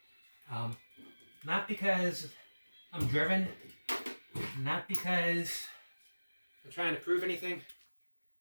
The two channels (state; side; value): inverted; both; correlation -1.00